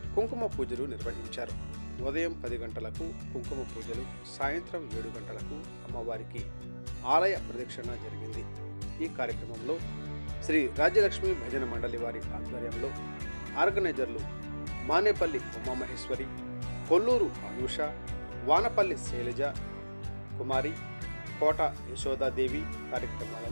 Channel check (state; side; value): inverted; both; correlation -1.00